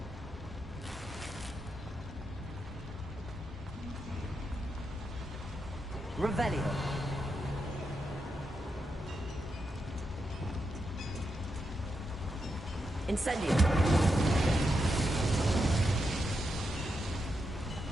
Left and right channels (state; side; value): normal; both; correlation 0.85